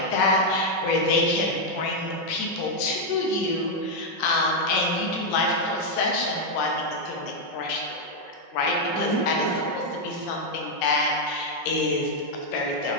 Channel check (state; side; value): late; right; 5.4 ms